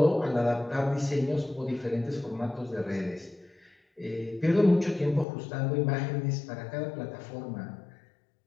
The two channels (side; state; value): right; drops out; at 5.2 s